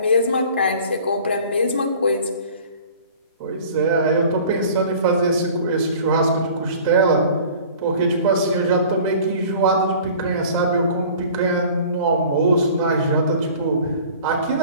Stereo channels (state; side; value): inverted; both; correlation -0.46